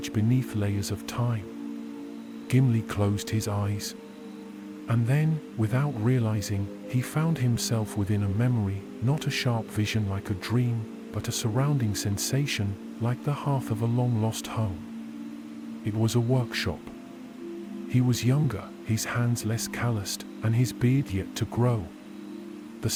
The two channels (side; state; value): both; identical; correlation 1.00